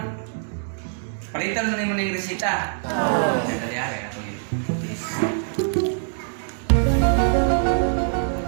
Palitan mo na imong ning resita. Dali ari ako yun.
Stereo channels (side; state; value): left; silent; 63 dB below the other